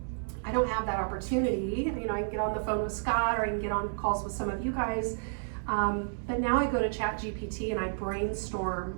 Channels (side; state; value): left; silent; digital silence